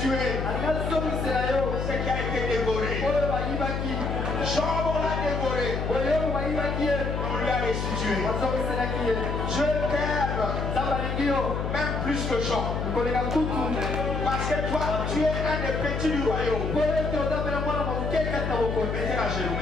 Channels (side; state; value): left; noise; hum, 2 dB below the sound